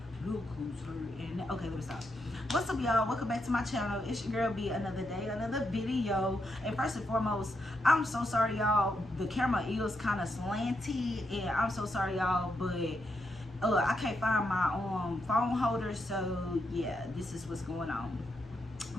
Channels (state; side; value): normal; both; correlation 0.82